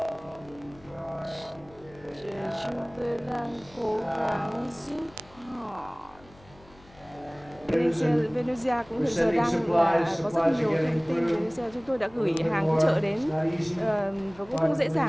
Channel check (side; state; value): left; noise; hum, 25 dB below the sound